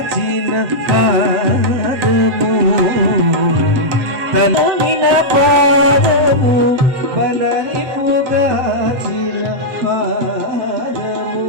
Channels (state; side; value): late; left; 7.8 ms